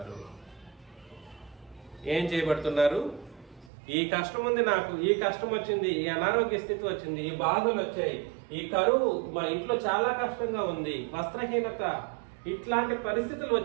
ఏం చేయబడుతున్నారు? ఈ కష్టం ఉంది, నాకు ఈ కష్టం వచ్చింది, ఈ అనారోగ్య స్థితి వచ్చింది, ఈ బాధలు వచ్చాయి, ఈ కరువు, మా ఇంట్లో చాలా కష్టంగా ఉంది, వస్త్రహీనత, ఇట్లాంటి పరిస్థితులు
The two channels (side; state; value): left; drops out; at 3.7 s